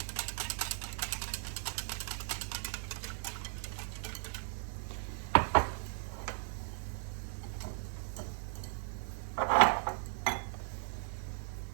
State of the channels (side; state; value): left; silent; 53 dB below the other